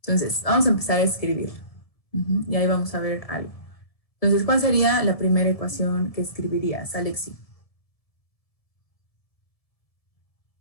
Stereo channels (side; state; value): right; late; 1.7 ms